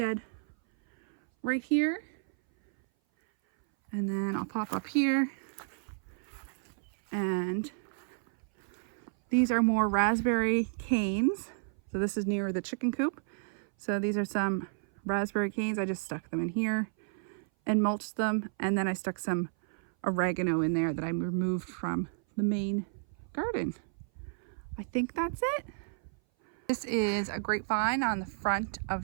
right here. And then I'll pop up here. And these are more raspberry canes. So this is near the chicken coop. So these are some raspberry canes. I just stuck them in here and mulched them. And then I stuck some oregano in there that I removed from the main garden. I think that's it. This is a grapevine on the front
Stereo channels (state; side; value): silent; left; 57 dB below the other